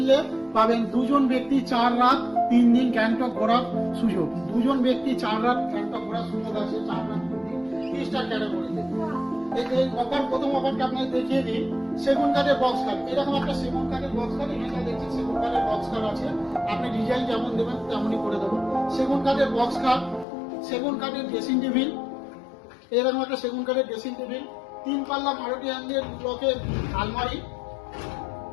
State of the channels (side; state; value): right; drops out; at 20.2 s